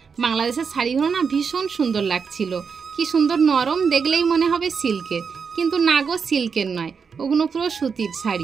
বাংলাদেশের শাড়িগুলো না ভীষণ সুন্দর লাগছিল, কি সুন্দর নরম, দেখলেই মনে হবে সিল্কের, কিন্তু না গো, সিল্কের নয়, ওগুলো পুরো সুতির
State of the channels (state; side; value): quieter; left; 5.9 dB